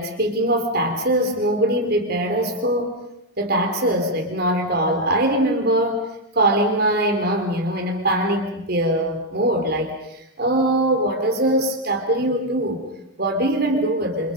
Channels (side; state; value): both; normal; correlation 0.02